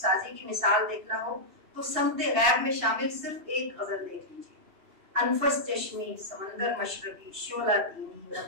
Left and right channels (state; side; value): late; left; 2.9 ms